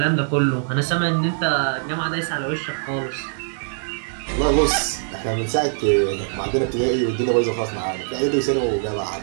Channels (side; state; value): left; silent; 64 dB below the other